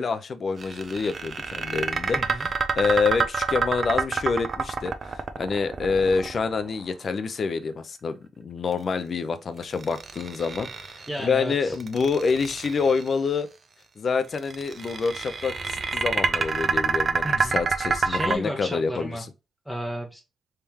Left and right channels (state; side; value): normal; both; correlation 0.82